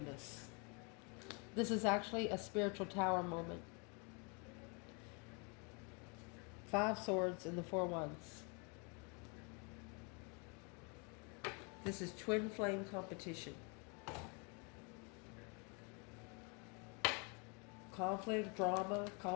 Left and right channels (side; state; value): right; quieter; 33.8 dB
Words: This is actually a spiritual tower moment. 5 swords and the 4 wands. This is twin flame competition. Conflict, drama,